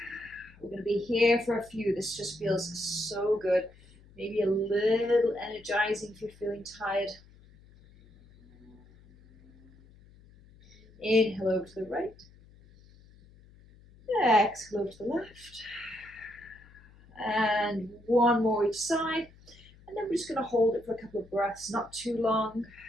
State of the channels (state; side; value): noise; left; hum, 25 dB below the sound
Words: We're going to be here for a few. This just feels so good. Maybe a little energizing if you're feeling tired. Inhale over to the right. Exhale over to the left. And one more each side. And then we're just going to hold it for a couple of breaths, not too long.